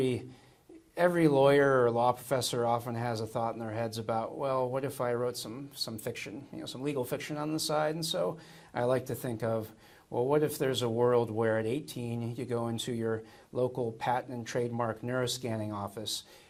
lawyer or law professor often has a thought in their heads about, well, what if I wrote some fiction, some legal fiction on the side? And so I like to think of, well, what if there's a world where at 18 you go into your local patent and trademark neuroscanning office,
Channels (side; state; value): both; identical; correlation 1.00